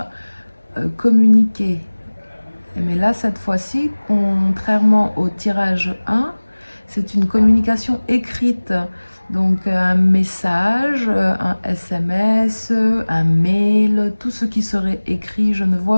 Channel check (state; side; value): inverted; both; correlation -1.00